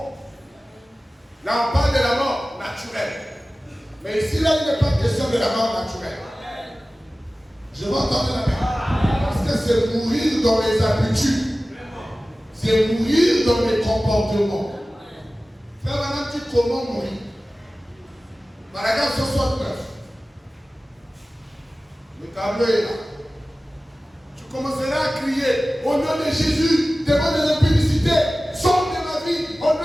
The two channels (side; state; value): both; normal; correlation 0.96